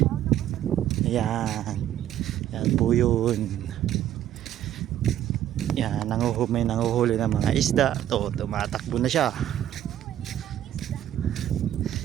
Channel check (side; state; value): left; quieter; 11.7 dB